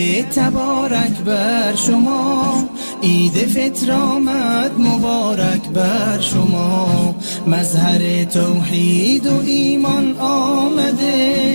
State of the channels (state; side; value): inverted; both; correlation -1.00